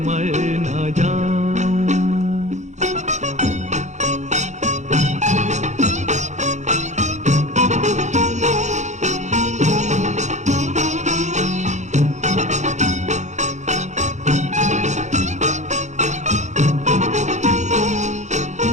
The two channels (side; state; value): left; late; 0.34 ms